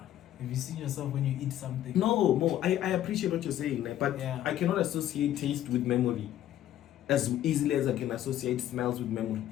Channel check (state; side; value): quieter; right; 12.3 dB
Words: you seen yourself when you eat something? No, I appreciate what you're saying, but I cannot associate taste with memory as easily as I can associate smells with memory.